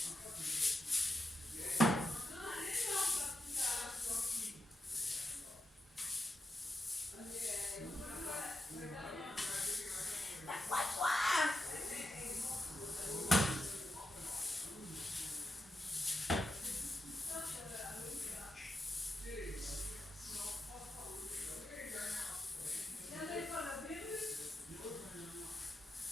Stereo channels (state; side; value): normal; both; correlation 0.87